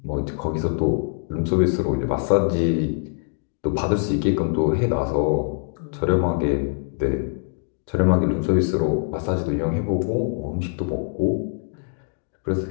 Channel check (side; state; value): right; silent; digital silence